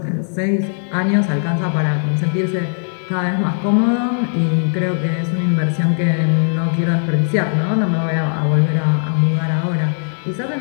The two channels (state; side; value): silent; right; digital silence